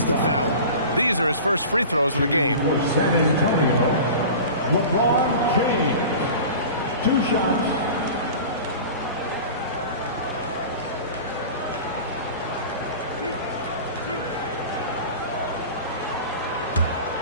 to foul him. These are his first free throws of the game. For San Antonio, LeBron James. 2 shots.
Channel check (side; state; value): both; inverted; correlation -0.36